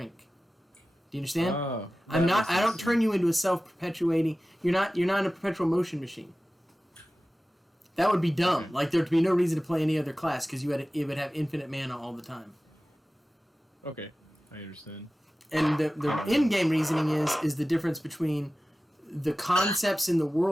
Do you understand? I don't turn you into a self-perpetuating. You're not a perpetual motion machine. That would be dumb. Okay. Like there'd be no reason to play any other class because it would have infinite mana all the time. Okay, I understand. And the in-game reasoning is the difference between the concepts in the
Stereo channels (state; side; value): normal; both; correlation 0.96